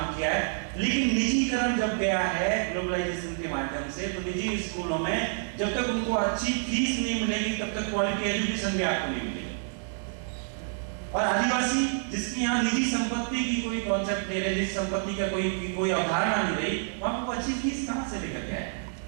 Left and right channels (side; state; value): left; silent; digital silence